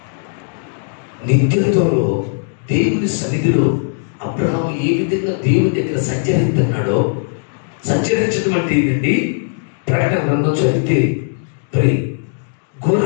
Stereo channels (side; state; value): right; silent; digital silence